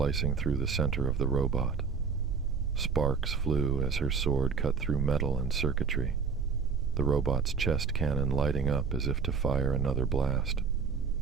through the center of the robot. Sparks flew as her sword cut through metal and circuitry, the robot's chest cannon lighting up as if to fire another blast.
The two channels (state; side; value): quieter; left; 5.7 dB